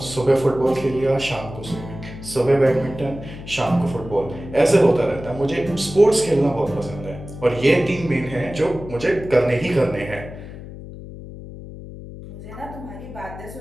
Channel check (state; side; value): noise; left; hum, 13 dB below the sound